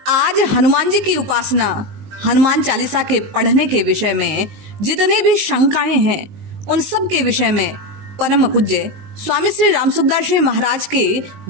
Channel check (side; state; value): left; late; 19 ms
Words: आज हनुमान जी की उपासना, हनुमान चालीसा के पढ़ने के विषय में जितने भी शंकाएं हैं, उन सब के विषय में परम पूज्य स्वामी श्री रामसुखदास जी महाराज के